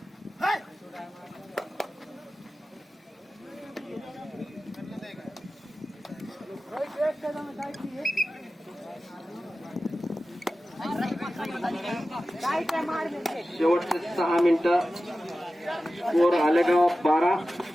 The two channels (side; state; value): both; normal; correlation 0.95